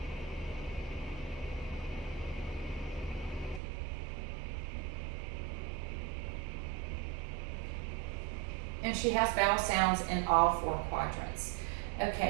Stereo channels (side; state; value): left; drops out; at 3.6 s